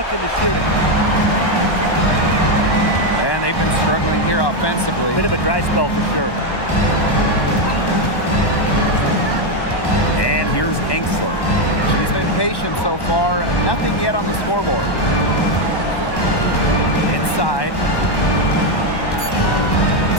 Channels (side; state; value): right; late; 1.1 ms